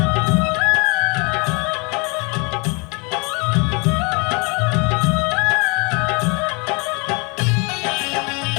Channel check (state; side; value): quieter; right; 30.8 dB